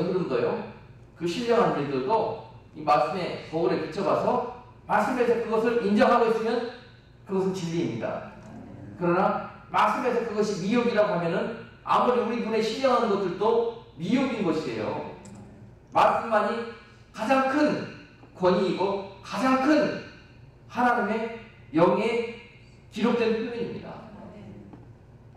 흐름도요, 그 그 신령한 일들도 이 말씀의 거울에 비춰봐서 말씀에서 그것을 인정하고 있으면 그것은 진리입니다. 그러나 말씀에서 그것이 미혹이라고 하면은 아무리 우리 눈에 신령한 것들도 미혹인 것이에요. 말씀만이 가장 큰 권위이고 가장 큰 하나님의 영에 기록된 표현입니다.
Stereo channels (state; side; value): identical; both; correlation 1.00